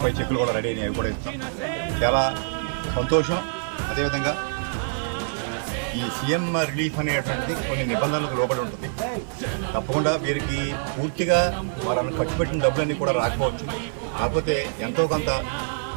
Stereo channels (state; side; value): silent; left; digital silence